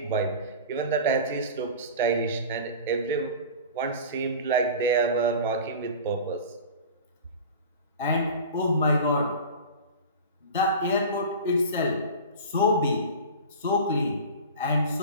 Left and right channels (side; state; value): both; inverted; correlation -0.34